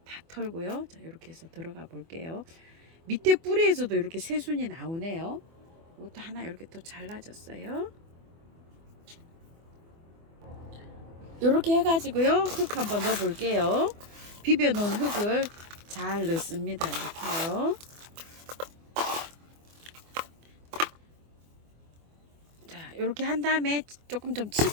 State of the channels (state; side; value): late; left; 24 ms